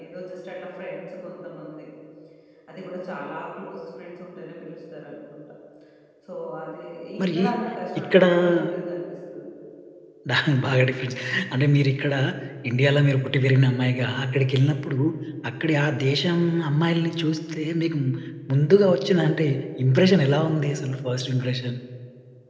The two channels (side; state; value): both; identical; correlation 1.00